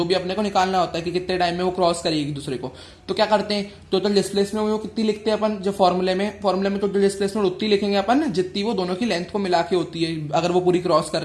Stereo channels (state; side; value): identical; both; correlation 1.00